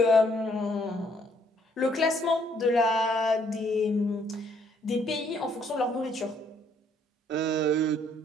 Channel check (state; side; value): normal; both; correlation 0.66